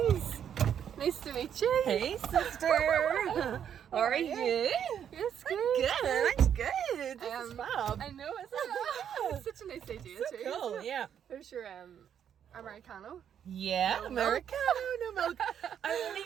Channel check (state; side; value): quieter; left; 8.9 dB